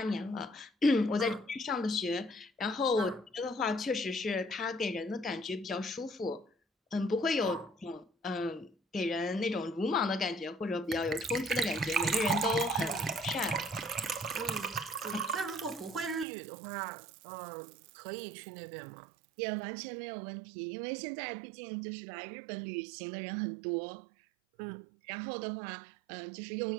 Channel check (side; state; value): left; drops out; at 16.2 s